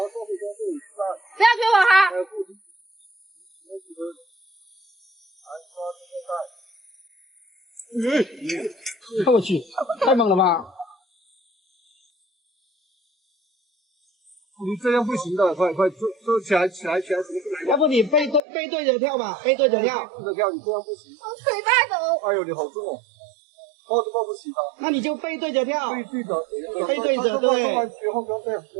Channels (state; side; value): drops out; left; at 18.4 s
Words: 要推我哈。我去，太猛了吧！你这样不行的，快坐起来，什么事来？要不你背对着跳吧，背对着跳。背着跳，你这样不行。我腿带抖。哎呦，你好重哦，抱都抱不起的。那你就背对着跳。背对着，对。别慌，不要这样，